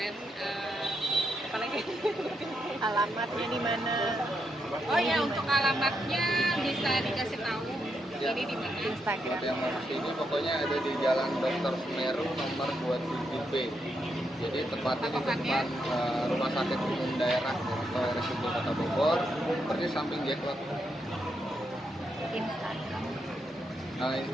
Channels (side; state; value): both; normal; correlation 0.81